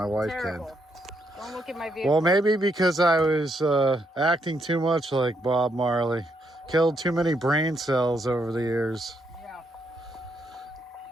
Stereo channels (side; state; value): both; normal; correlation 0.77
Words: wife Terrible. Don't look at my can. vehicle. Well, maybe because I was acting too much like Bob Marley. Killed too many brain cells over the years. Yeah.